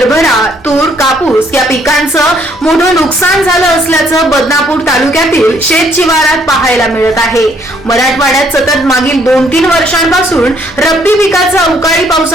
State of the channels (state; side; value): normal; both; correlation 0.66